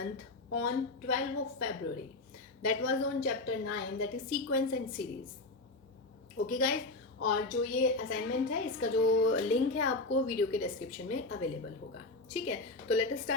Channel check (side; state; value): right; quieter; 3.1 dB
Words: on 12th of February. That was on chapter 9, that is sequence and series. Okay guys, और जो ये assignment है इसका जो link है आपको video के description में अवेलेबल होगा. ठीक है, तो let us